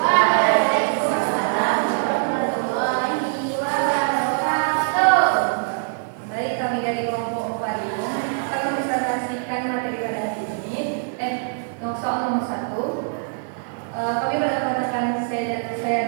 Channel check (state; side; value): silent; left; digital silence